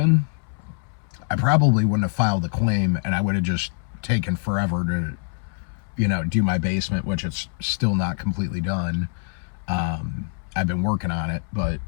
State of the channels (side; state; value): right; silent; 63 dB below the other